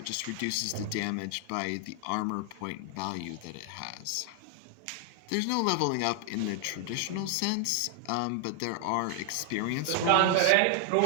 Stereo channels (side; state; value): both; different; correlation 0.00